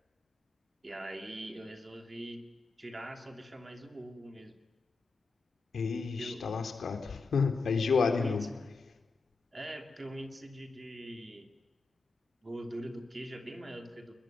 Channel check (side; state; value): right; quieter; 4.0 dB